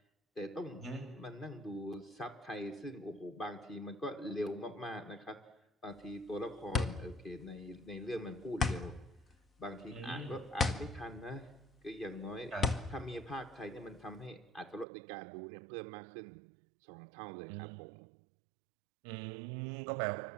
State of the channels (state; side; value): drops out; left; at 14.9 s